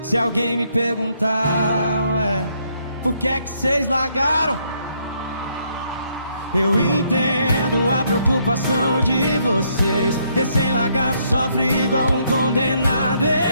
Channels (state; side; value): inverted; both; correlation -0.72